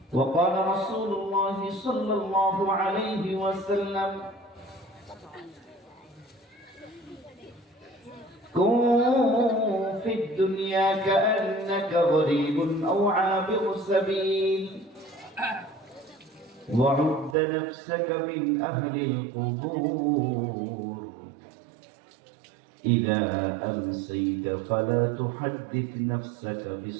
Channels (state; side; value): drops out; left; at 17.4 s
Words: وقال رسول الله صلى الله عليه وسلم كن في الدنيا كأنك غريب أو عابر سبيل وعد نفسك من أهل القبور إذا أمسيت فلا تحدث نفسك